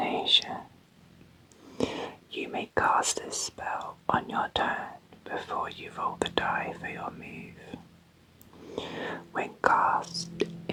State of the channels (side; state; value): both; identical; correlation 1.00